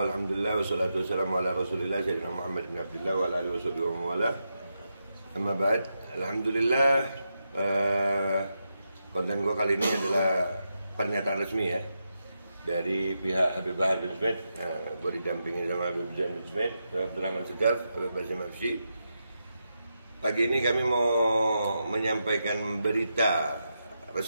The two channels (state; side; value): inverted; both; correlation -0.86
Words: alhamdulillah, wassalatu wassalamu ala rasulillah Sayyidina Muhammad bin Abdullah wa ala alihi wa wala. Amma ba'd. Alhamdulillah, konten gua kali ini adalah pernyataan resmi ya dari pihak Habib Bahar bin Smith. Gua didampingi sama Habib Zain bin Smith, Abdurrahman Segaf, Habib Basim Afsy. Pagi ini kami mau menyampaikan berita